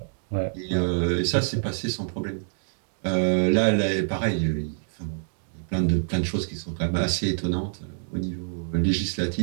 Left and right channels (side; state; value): left; silent; digital silence